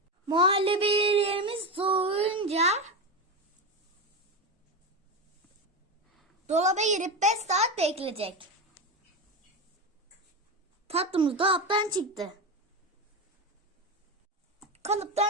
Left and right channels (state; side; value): normal; both; correlation 0.17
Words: Muhallebilerimiz soğuyunca dolaba girip 5 saat bekleyecek. Tatlımız dolaptan çıktı.